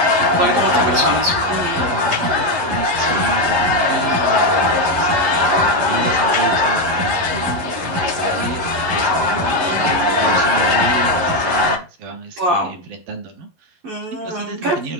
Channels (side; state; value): left; late; 11 ms